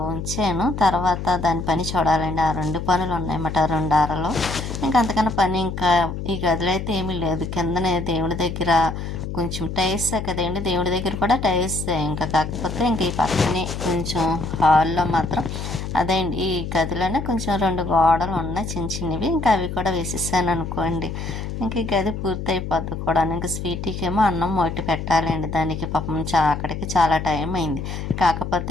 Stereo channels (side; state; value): left; noise; hum, 6 dB below the sound